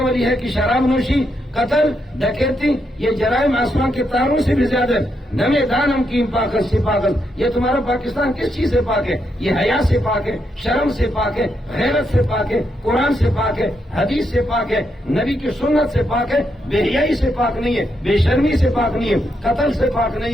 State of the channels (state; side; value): normal; both; correlation 0.80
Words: والی ہے کہ شراب نوشی، قتل، ڈکیتی، یہ جرائم آسمان کے تاروں سے بھی زیادہ۔ نمے دانم کی پاکت سے پاکت، یہ تمہارا پاکستان کس چیز سے پاک ہے؟ یہ حیا سے پاک ہے، شرم سے پاک ہے، غیرت سے پاک ہے، قرآن سے پاک ہے، حدیث سے پاک ہے، نبی کی سنت سے پاک ہے، بے حیائی سے پاک نہیں ہے، بے شرمی سے پاک نہیں ہے، قتل سے پاک